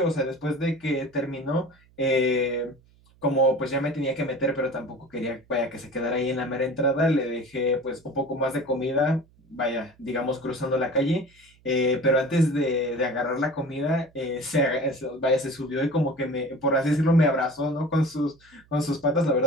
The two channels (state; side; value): noise; right; hum, 30 dB below the sound